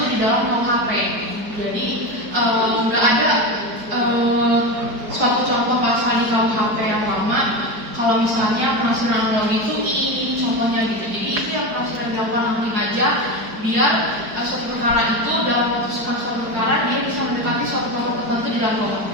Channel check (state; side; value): late; left; 4.7 ms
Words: di dalam KUHP. Jadi nggak ada suatu contoh pasal di KUHP yang lama. Kalau misalnya penafsiran analogi itu ini contohnya gitu. Jadi itu yang penafsiran dilakukan hakim aja biar suatu perkara itu dalam memutuskan suatu perkara dia bisa mendekati suatu contoh tertentu di dalam KUHP.